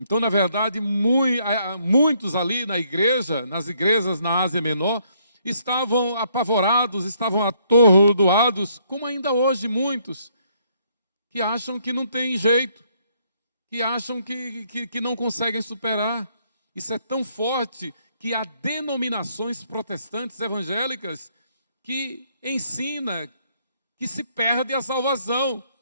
na verdade, muitos ali na igreja, nas igrejas na Ásia Menor, estavam apavorados, estavam atordoados, como ainda hoje muitos, que acham que não tem jeito, que acham que não conseguem superar. Isso é tão forte que há denominações protestantes evangélicas que ensina que se perde a salvação.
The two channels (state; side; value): inverted; both; correlation -0.70